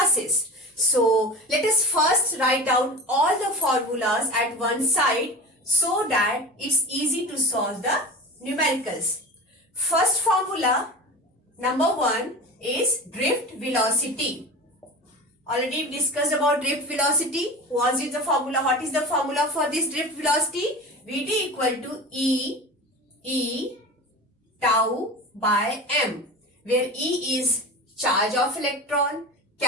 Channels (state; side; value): normal; both; correlation 0.31